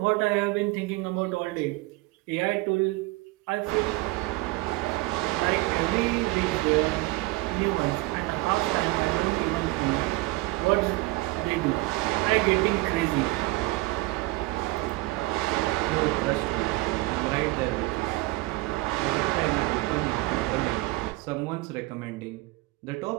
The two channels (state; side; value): quieter; left; 21.5 dB